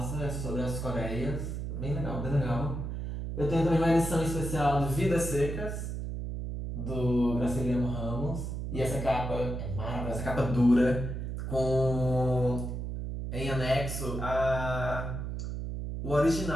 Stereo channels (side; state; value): right; noise; hum, 4 dB below the sound